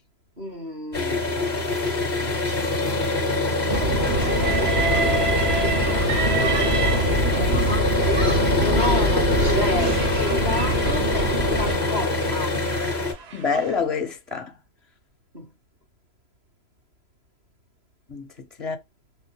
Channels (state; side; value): late; left; 3.0 ms